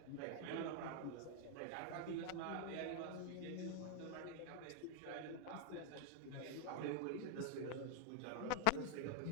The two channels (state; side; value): different; both; correlation 0.00